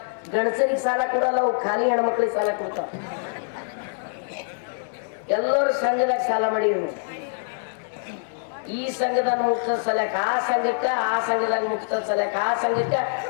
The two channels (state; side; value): silent; right; digital silence